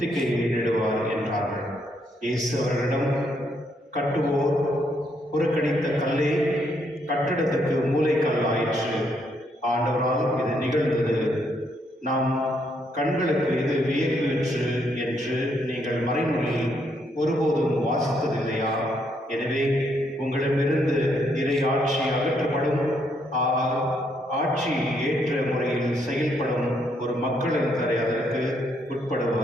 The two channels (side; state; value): both; normal; correlation 0.74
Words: என்றார்கள். இயேசு அவர்களிடம், கட்டுவோர் புறக்கணித்த கல்லே கட்டிடத்துக்கு மூலைக்கல் ஆயிற்று. ஆண்டவரால் இது நிகழ்ந்தது. நாம் கண்களுக்கு இது வியப்பு என்று நீங்கள் மறைநூலில் ஒருபோதும் வாசித்ததில்லையா? எனவே உங்களிடமிருந்து இறை ஆட்சி அகற்றப்படும், ஆட்சி ஏற்ற முறையில் செயல்படும் ஒரு மக்களினரை அதற்கு